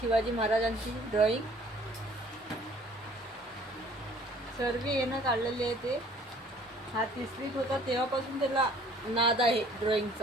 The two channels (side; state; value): both; normal; correlation 0.54